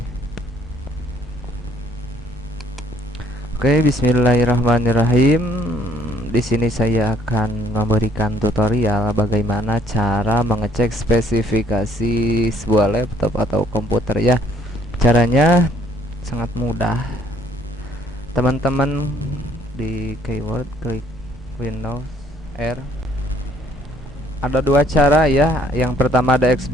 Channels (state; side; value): normal; both; correlation 0.57